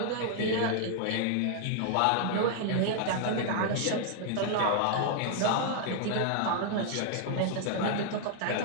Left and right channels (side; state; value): both; different; correlation 0.00